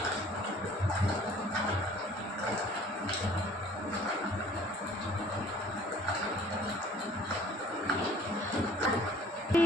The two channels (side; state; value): both; normal; correlation 0.53